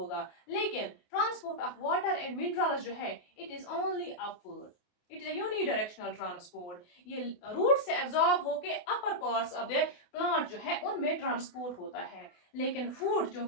लेकिन transport of water and minerals जो है it is only upward. It is unidirectional transport. ये रूट से एब्जॉर्ब होके अपर पार्ट्स ऑफ द प्लांट जो है उनमें ट्रांसपोर्ट होता है. लेकिन फूड जो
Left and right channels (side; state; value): right; late; 28 ms